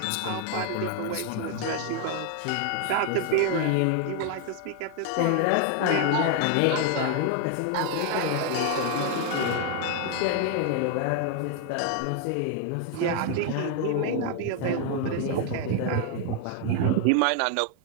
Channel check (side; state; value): both; different; correlation 0.00